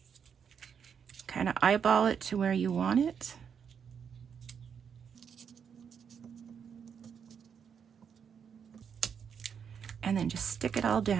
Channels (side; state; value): left; quieter; 7.2 dB